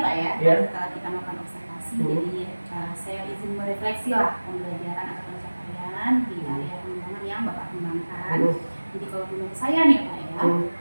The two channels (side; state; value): both; inverted; correlation -1.00